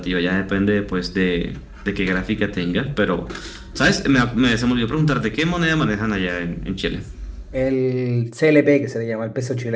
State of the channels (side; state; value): both; identical; correlation 1.00